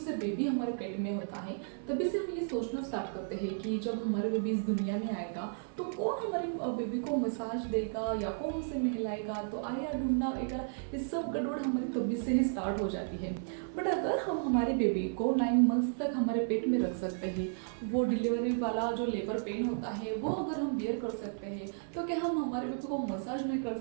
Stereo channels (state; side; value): silent; left; 55 dB below the other